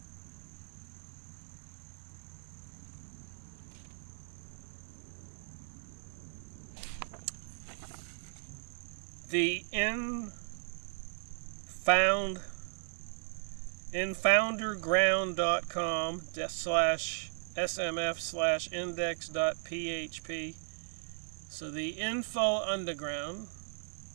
The infounderground.com/smf/index.php. So the Info Underground,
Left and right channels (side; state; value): left; silent; 53 dB below the other